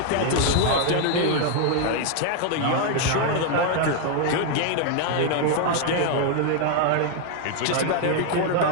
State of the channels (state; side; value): different; both; correlation 0.00